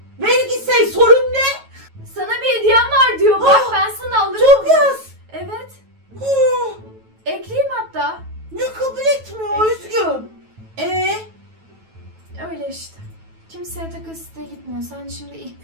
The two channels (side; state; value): left; late; 9.2 ms